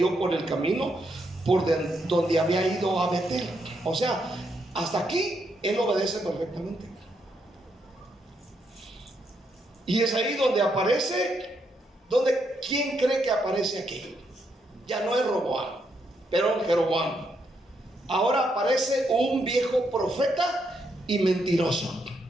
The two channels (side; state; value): both; normal; correlation 0.78